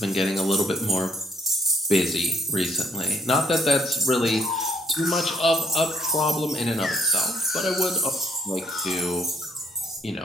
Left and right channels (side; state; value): both; normal; correlation 0.67